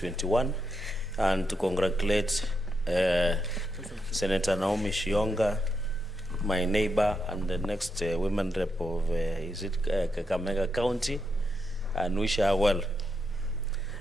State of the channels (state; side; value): normal; both; correlation 0.83